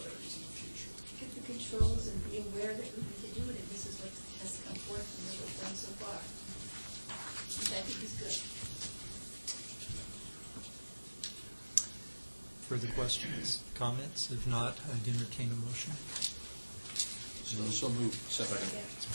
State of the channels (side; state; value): both; inverted; correlation -1.00